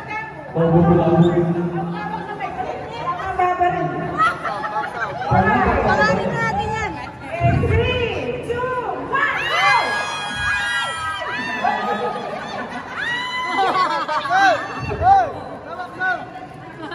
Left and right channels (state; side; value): identical; both; correlation 1.00